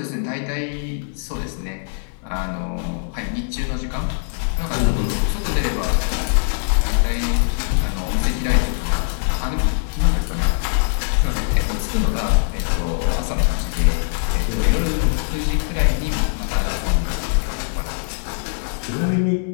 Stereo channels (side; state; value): right; silent; digital silence